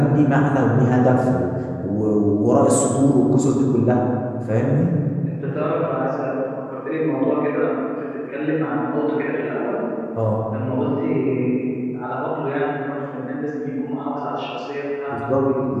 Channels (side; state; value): both; identical; correlation 1.00